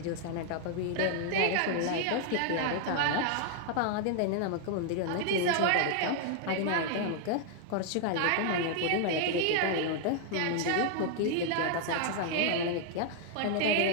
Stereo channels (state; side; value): different; both; correlation 0.00